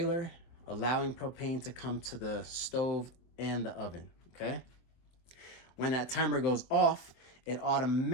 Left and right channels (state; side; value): late; right; 23 ms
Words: allowing propane to come to the stove and the oven, okay? When that timer goes off, it